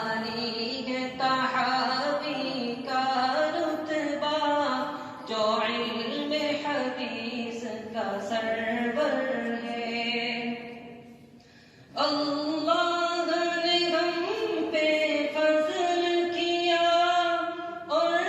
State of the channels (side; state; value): both; identical; correlation 1.00